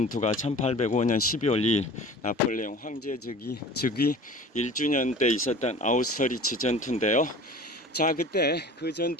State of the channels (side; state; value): both; normal; correlation 0.41